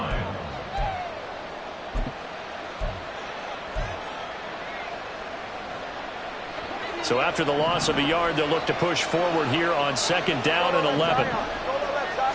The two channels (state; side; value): identical; both; correlation 1.00